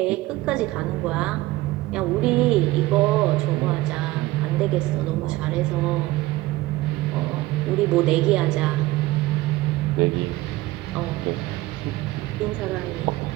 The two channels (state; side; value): quieter; left; 18.2 dB